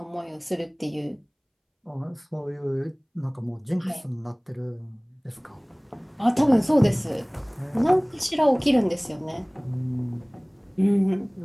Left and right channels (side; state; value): both; identical; correlation 1.00